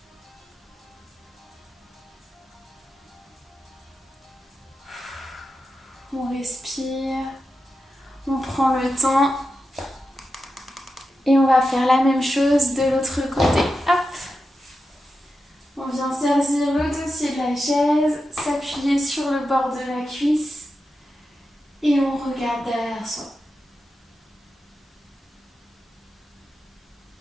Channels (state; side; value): normal; both; correlation 0.90